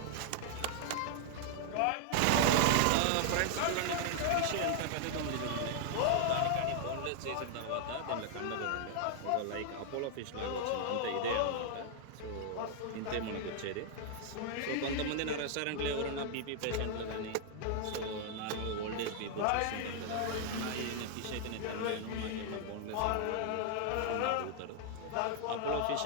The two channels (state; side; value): different; both; correlation 0.00